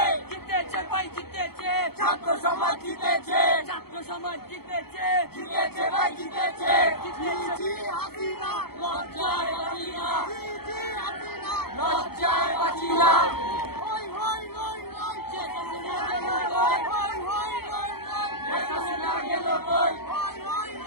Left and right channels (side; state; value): right; late; 0.96 ms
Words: জিতেছে ভাই জিতেছে, ছাত্র সমাজ জিতেছে, ছাত্র সমাজ জিতেছে, জিতেছে ভাই জিতেছে। জি জি হাসিনা, লজ্জায় হাসিনা, জি জি হাসিনা, লজ্জায় হাসিনা।